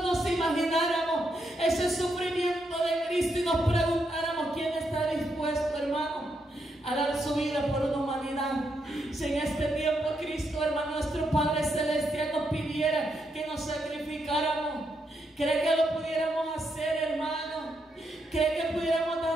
nos imagináramos ese sufrimiento de Cristo y nos preguntáramos quién está dispuesto, hermano, a dar su vida por una humanidad. Si en este tiempo Cristo, hermano, nuestro Padre Celestial nos pidiera que nos sacrificáramos, ¿cree que lo pudiéramos hacer, hermano? ¿Cree que pudiéramos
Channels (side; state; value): both; normal; correlation 0.80